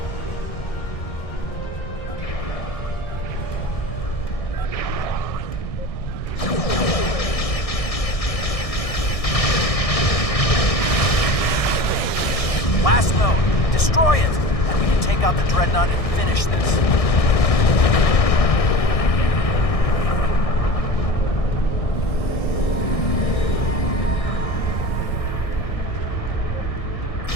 Last node, destroy it, and we can take out the Dreadnought and finish this.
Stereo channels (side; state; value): right; late; 1.6 ms